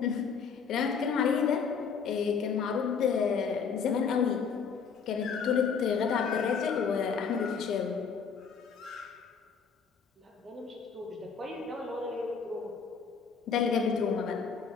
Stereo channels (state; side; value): quieter; right; 6.0 dB